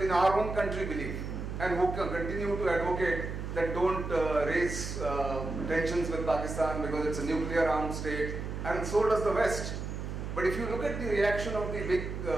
our own country believe, and who continue to advocate that don't raise tensions with Pakistan because it's a nuclear armed state, and so does the West. But if you look at the reaction of the big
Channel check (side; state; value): right; noise; hum, 5 dB below the sound